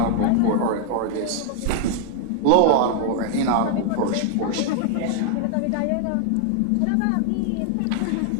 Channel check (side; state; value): both; different; correlation 0.00